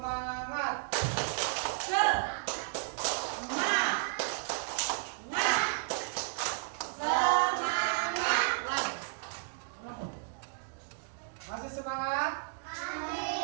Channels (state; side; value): silent; left; digital silence